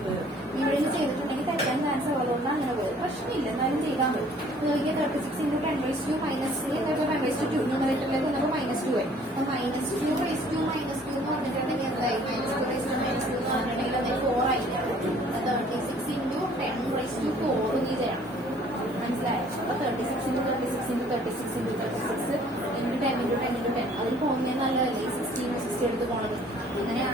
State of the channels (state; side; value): normal; both; correlation 0.56